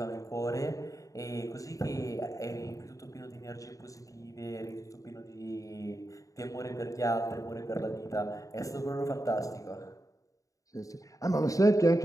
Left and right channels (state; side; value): late; right; 0.16 ms